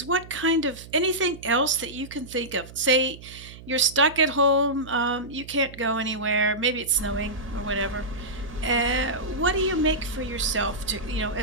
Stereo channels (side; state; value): right; noise; hum, 17 dB below the sound